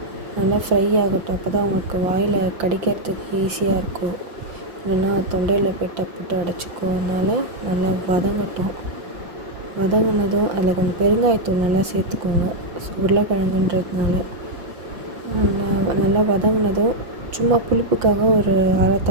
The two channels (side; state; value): left; late; 5.8 ms